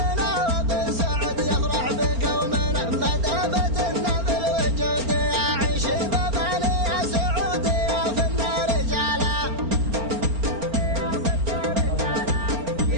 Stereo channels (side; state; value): left; late; 4.4 ms